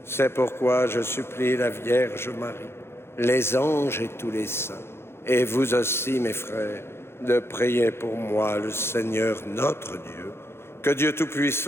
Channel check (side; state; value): right; late; 0.12 ms